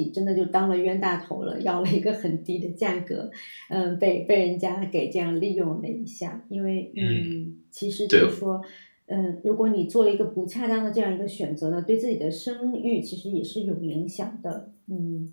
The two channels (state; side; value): inverted; both; correlation -1.00